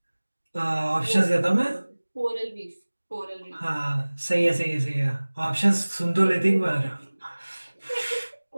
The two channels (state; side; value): inverted; both; correlation -1.00